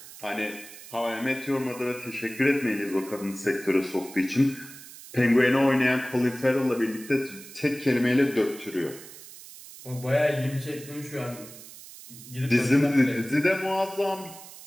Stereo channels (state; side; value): noise; right; hiss, 17 dB below the sound